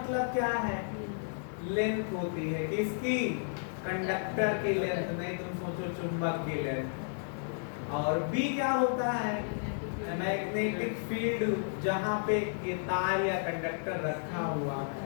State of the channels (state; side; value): silent; right; digital silence